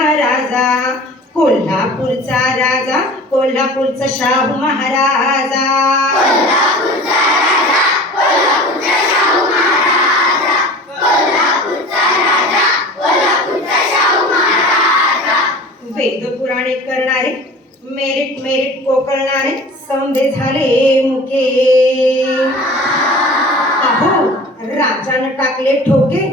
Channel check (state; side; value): normal; both; correlation 0.40